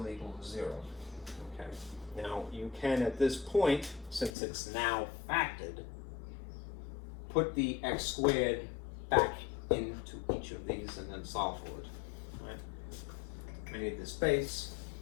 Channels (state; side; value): drops out; right; at 4.3 s